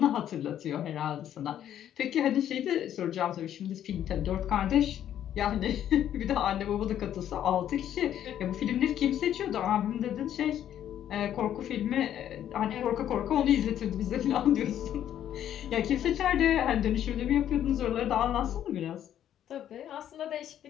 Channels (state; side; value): quieter; right; 10.7 dB